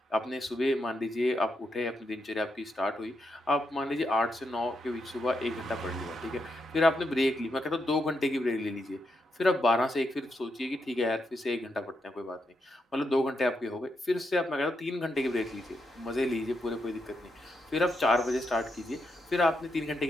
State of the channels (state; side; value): normal; both; correlation 0.82